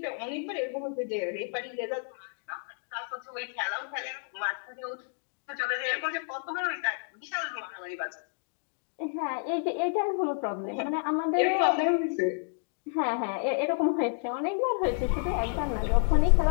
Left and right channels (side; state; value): right; silent; 58 dB below the other